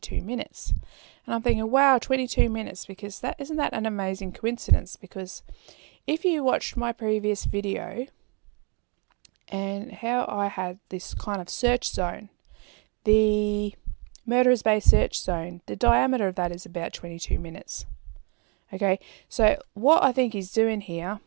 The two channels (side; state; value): left; quieter; 34.0 dB